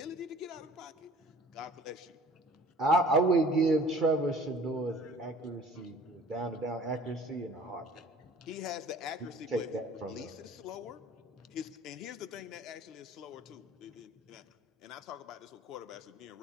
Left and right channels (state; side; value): normal; both; correlation 0.49